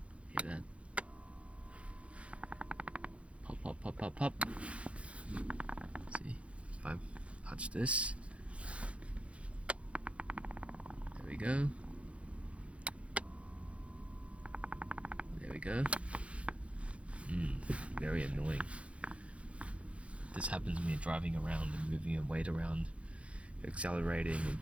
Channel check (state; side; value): late; left; 0.062 ms